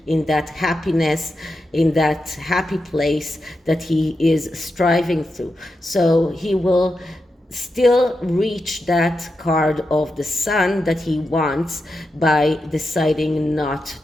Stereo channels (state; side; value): normal; both; correlation 0.88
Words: in that happiness, in that happy place that he is striving through. So he will still reach that card of the Sun that he wants by deciding not